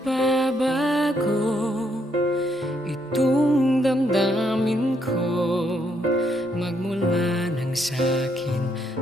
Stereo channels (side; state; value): both; normal; correlation 0.74